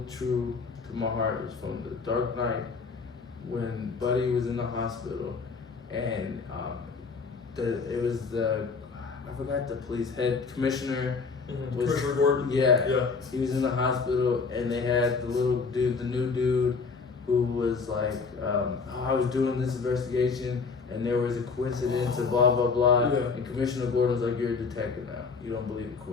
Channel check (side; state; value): right; quieter; 4.9 dB